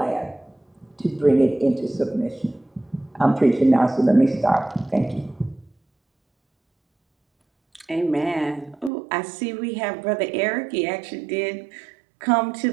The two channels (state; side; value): drops out; left; at 8.9 s